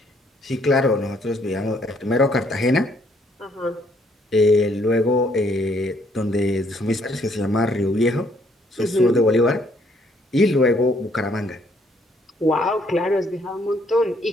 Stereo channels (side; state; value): both; normal; correlation 0.67